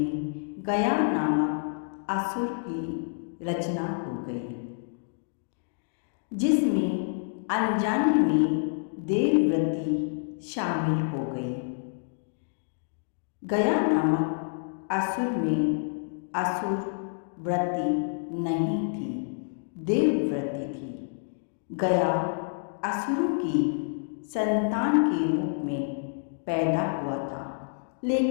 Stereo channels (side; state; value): right; silent; digital silence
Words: गया नामक असुर की रचना हो गई, जिसमें अनजाने में देवव्रति शामिल हो गई। गया नामक असुर में असुर व्रति नहीं थी, देवव्रति थी। गया असुरों की संतान के रूप में पैदा हुआ था,